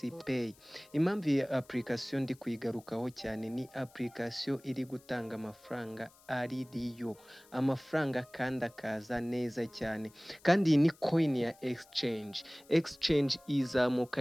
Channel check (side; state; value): left; noise; hiss, 27 dB below the sound